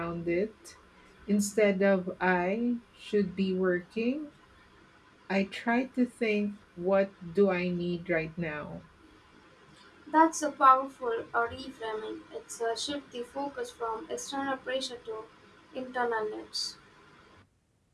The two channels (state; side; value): identical; both; correlation 1.00